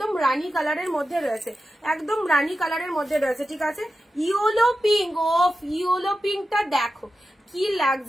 রানী কালারের মধ্যে রয়েছে, একদম রানী কালারের মধ্যে রয়েছে, ঠিক আছে। ইয়েলো পিঙ্ক, ও ইয়েলো পিঙ্কটা দেখো কি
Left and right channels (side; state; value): both; normal; correlation 0.91